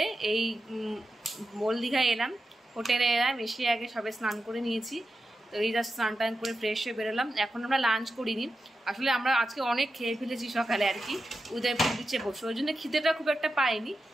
এই মল দীঘায় এলাম হোটেলে এলাম এসে আগে সবে স্নান করে নিয়েছি তো এই জাস্ট স্নান টান করে ফ্রেশ হয়ে বেরোলাম এখন আমরা লাঞ্চ করিনি আসলে আমরা আজকে অনেক খেয়ে ফেলেছি সকালে আর কি উদয়পুর বিচে বসে ওই জন্য খিদেটা খুব একটা পাইনি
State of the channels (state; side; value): normal; both; correlation 0.90